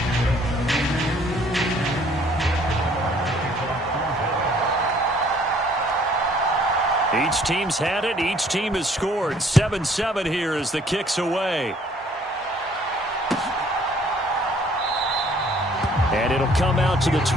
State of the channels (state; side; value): normal; both; correlation 0.59